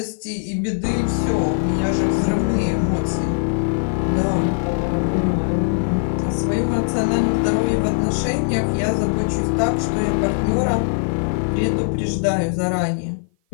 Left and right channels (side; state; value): right; silent; 56 dB below the other